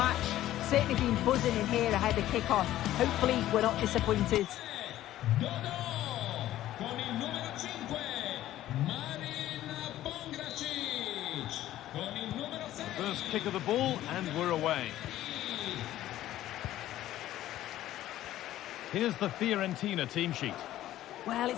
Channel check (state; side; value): quieter; right; 13.8 dB